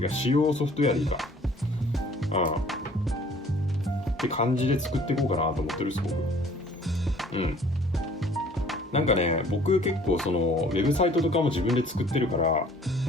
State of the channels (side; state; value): both; normal; correlation 0.54